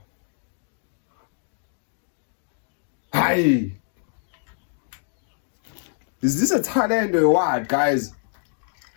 Hayi. Is this a talent or what, guys?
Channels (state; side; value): silent; right; digital silence